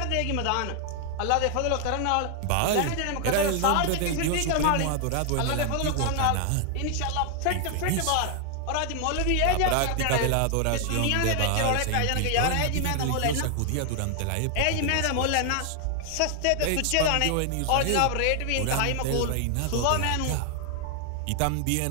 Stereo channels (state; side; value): different; both; correlation 0.00